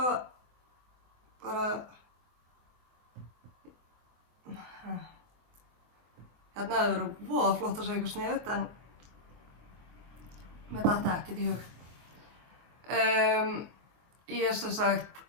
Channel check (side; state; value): left; late; 24 ms